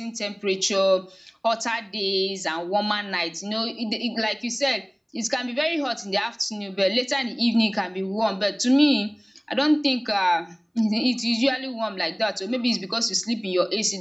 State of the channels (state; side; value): identical; both; correlation 1.00